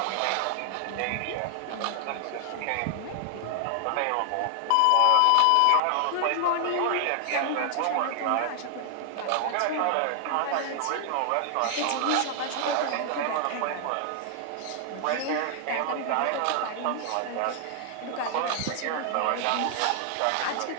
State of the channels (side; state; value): both; different; correlation 0.00